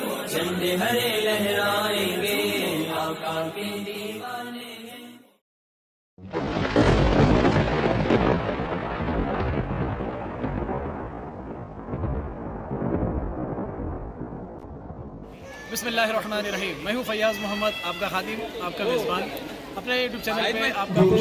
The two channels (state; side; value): identical; both; correlation 1.00